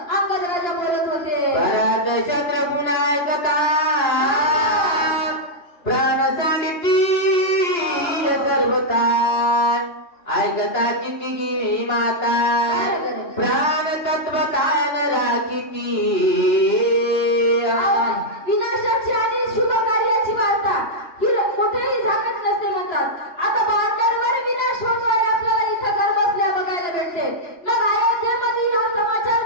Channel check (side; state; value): right; late; 2.9 ms